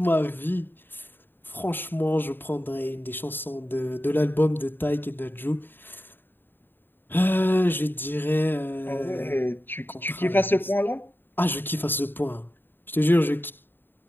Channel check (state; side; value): late; right; 0.095 ms